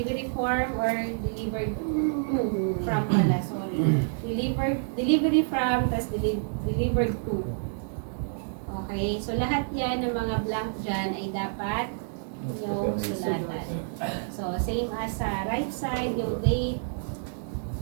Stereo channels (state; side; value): silent; left; digital silence